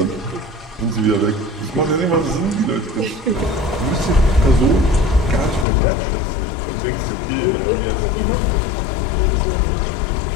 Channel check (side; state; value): right; drops out; at 5.7 s